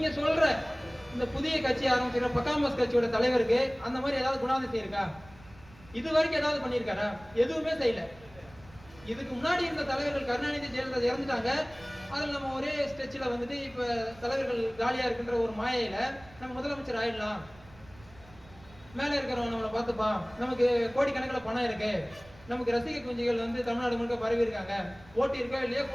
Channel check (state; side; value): noise; right; rumble, 23 dB below the sound